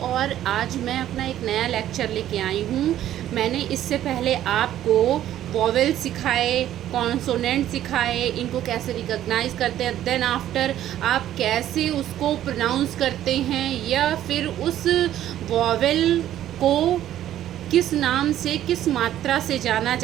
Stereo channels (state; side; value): quieter; left; 12.2 dB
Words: और आज मैं अपना एक नया लेक्चर लेके आई हूँ। मैंने इससे पहले आपको वॉवेल सिखाए, कॉन्सोनेंट सिखाए, इनको कैसे रिकॉग्नाइज करते हैं, देन आफ्टर आप कैसे उसको प्रोनाउंस करते हैं, या फिर उस वॉवेल को किस नाम से, किस मात्रा से जाना